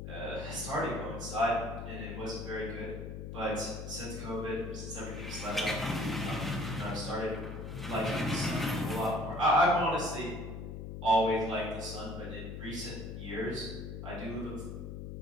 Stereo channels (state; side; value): noise; left; hum, 7 dB below the sound